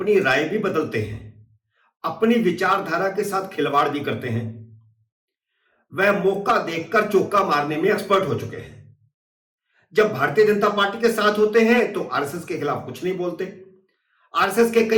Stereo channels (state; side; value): identical; both; correlation 1.00